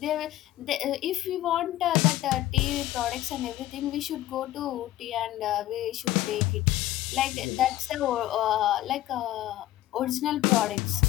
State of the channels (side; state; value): right; quieter; 14.8 dB